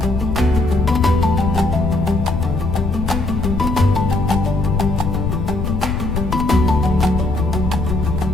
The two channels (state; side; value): noise; left; rumble, 2 dB below the sound